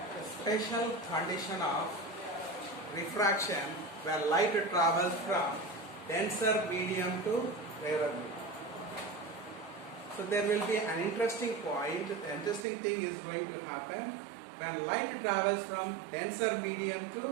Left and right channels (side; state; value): left; drops out; at 12.7 s